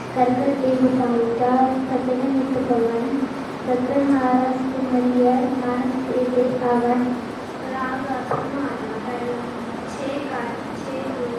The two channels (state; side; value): identical; both; correlation 1.00